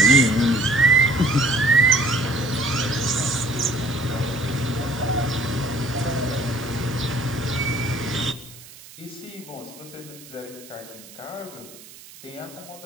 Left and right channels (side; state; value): right; noise; hiss, 19 dB below the sound